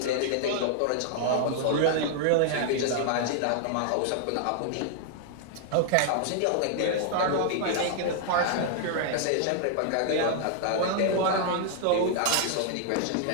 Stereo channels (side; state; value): both; different; correlation -0.01